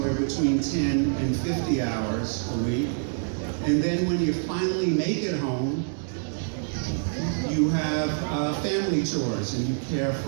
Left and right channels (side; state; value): left; silent; digital silence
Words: between 10 and 50 hours a week. And then when you finally make it home, you have family chores and you care